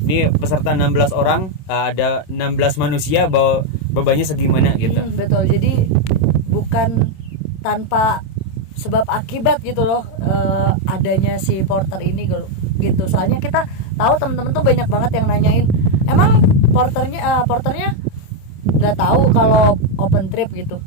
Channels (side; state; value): right; late; 27 ms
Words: Ini peserta 16 orang, ada 16 manusia, bawa bebannya segimana gitu. Betul, jadi bukan tanpa sebab akibat gitu loh adanya si porter ini gitu. Soalnya kita tahu teman-teman tuh banyak banget yang nanyain, emang porternya nggak tahu kalau open trip gitu.